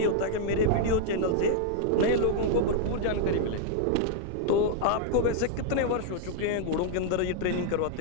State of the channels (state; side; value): different; both; correlation 0.00